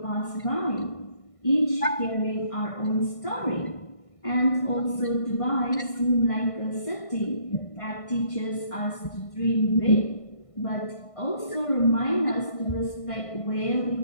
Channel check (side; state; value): right; late; 1.5 ms